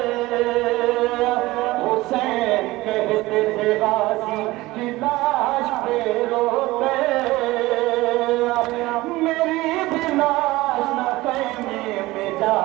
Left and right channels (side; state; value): left; quieter; 19.2 dB